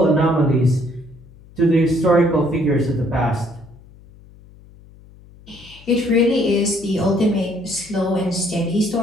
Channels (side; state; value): left; noise; hum, 23 dB below the sound